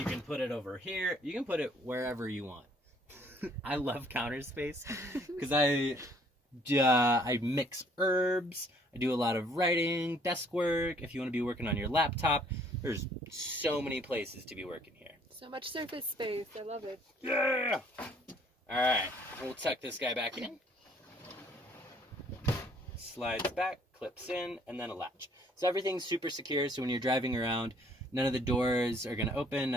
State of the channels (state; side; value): normal; both; correlation 0.61